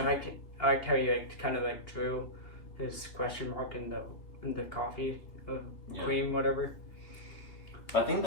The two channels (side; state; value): right; late; 2.8 ms